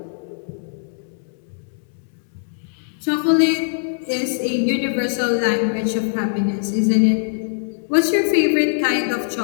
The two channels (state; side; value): silent; right; 65 dB below the other